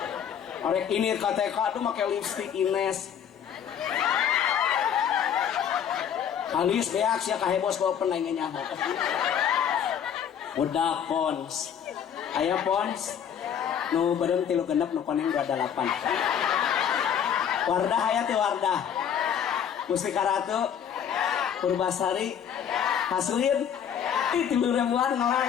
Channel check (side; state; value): right; quieter; 8.6 dB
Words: Arek ini KTK tuh make lipstick Ines. Alis beak sia ka hebos bawa peneng nyaho. Budak pons. Aya pons. Nu beureum 36 nu koneng 28. Wardah aya teh Wardah. Mustika Ratu. Purbasari. Hasuin. Ih 3.000-an